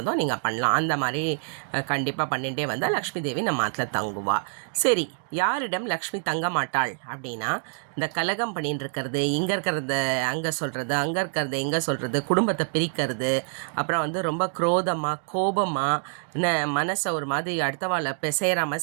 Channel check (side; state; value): left; silent; 61 dB below the other